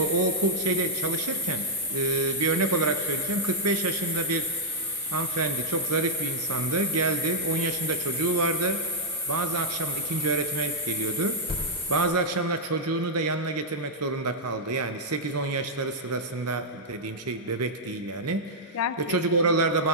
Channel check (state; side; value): normal; both; correlation -0.06